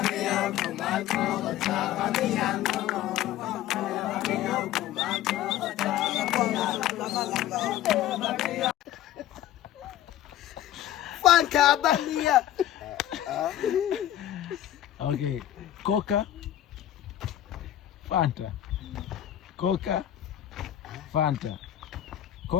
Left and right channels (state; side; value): quieter; right; 12.5 dB